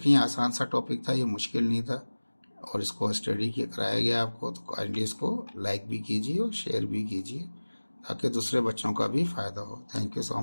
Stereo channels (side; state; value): both; inverted; correlation -1.00